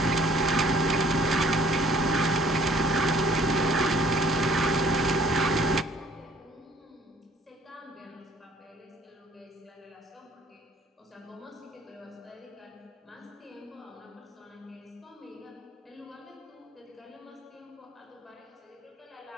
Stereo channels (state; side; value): normal; both; correlation 0.57